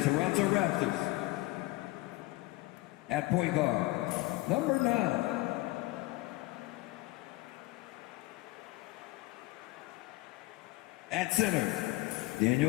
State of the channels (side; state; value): right; quieter; 19.9 dB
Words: Raptors. At point guard, number 9. At center,